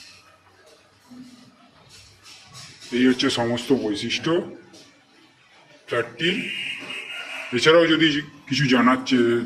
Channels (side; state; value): both; identical; correlation 1.00